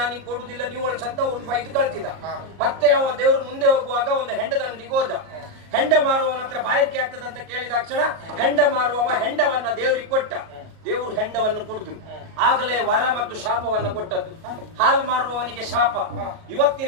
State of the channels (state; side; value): late; left; 37 ms